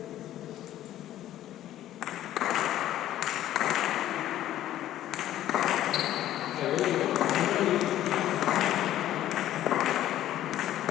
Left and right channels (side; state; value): right; quieter; 12.9 dB